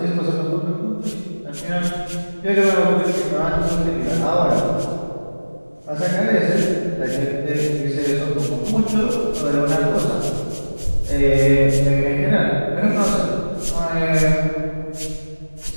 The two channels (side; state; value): both; inverted; correlation -1.00